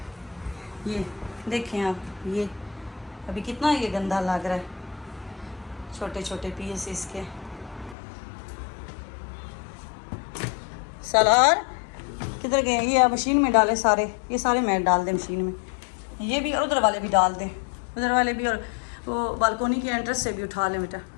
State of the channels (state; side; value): drops out; right; at 8.0 s